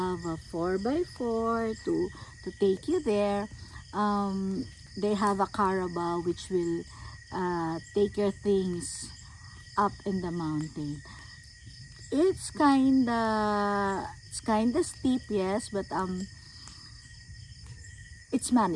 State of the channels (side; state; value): both; identical; correlation 1.00